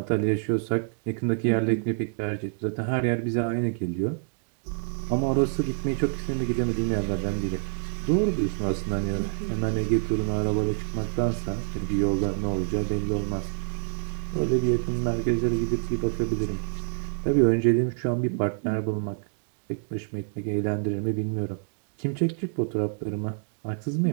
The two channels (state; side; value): silent; left; digital silence